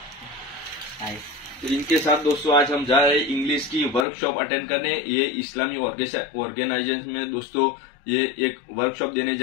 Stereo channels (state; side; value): drops out; right; at 4.0 s